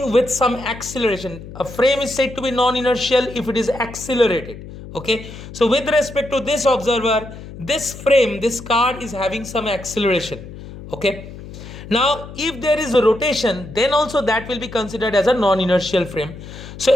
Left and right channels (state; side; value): noise; left; hum, 14 dB below the sound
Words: with some acceleration. A frame is said to be non-inertial if it is accelerated. Okay, so with respect to this observer, this frame, this car is having some acceleration. Okay, now if there is a rotation, then also that will be considered as a non-inertial frame.